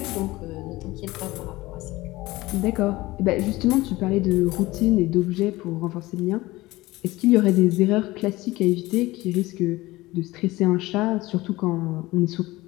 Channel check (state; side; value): quieter; right; 19.3 dB